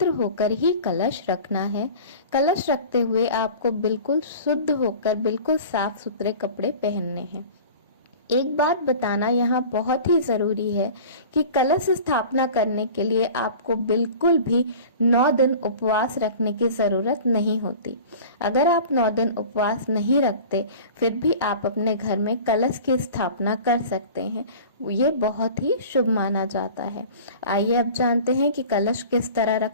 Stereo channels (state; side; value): inverted; both; correlation -0.40